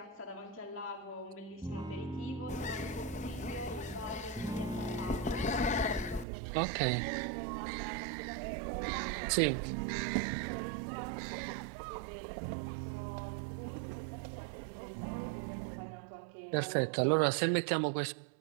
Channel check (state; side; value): drops out; left; at 6.2 s